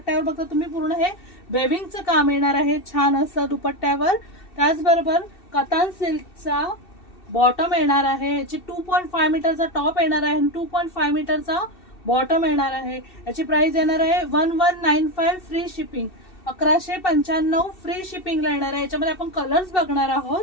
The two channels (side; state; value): right; late; 2.7 ms